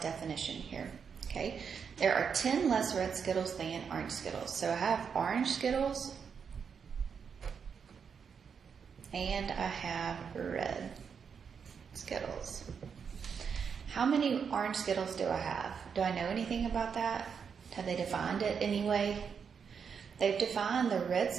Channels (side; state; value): left; quieter; 6.5 dB